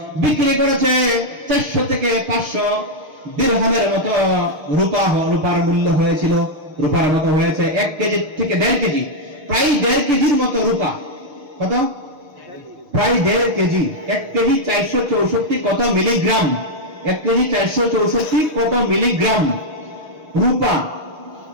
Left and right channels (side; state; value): left; late; 6.4 ms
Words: বিক্রি করেছে 400 থেকে 500 দিরহামের মতো রূপা, রূপার মূল্য হয়েছিল, রূপার মতো হয়েছে 1 কেজি থেকে 1.5 কেজি, প্রায় 1.5 কেজির মতো রূপা। কত? প্রায় 1.5 কেজি। 1 কেজি 464 কত মিলিগ্রাম? 1 কেজি 464 কত মিলিগ্রাম রূপা,